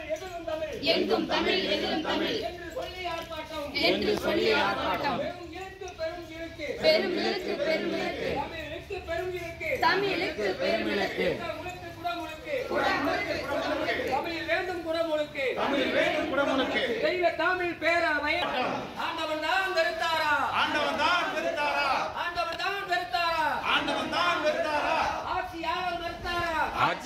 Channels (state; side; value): identical; both; correlation 1.00